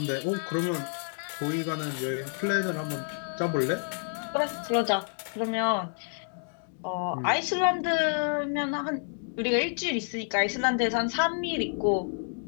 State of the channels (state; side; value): silent; right; 59 dB below the other